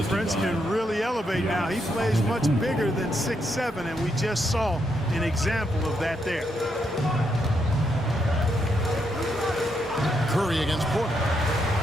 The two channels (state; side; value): normal; both; correlation 0.79